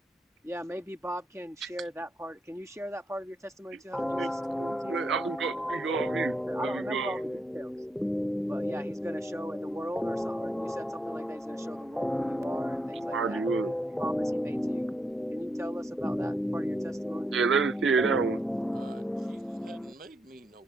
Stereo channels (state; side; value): normal; both; correlation 0.79